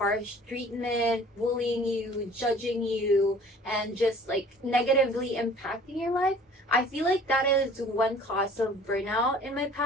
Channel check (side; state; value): both; normal; correlation 0.50